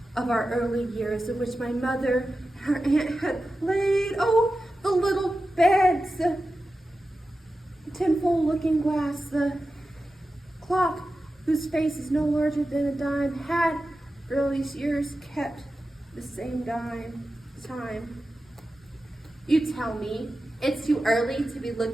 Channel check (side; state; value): both; normal; correlation 0.93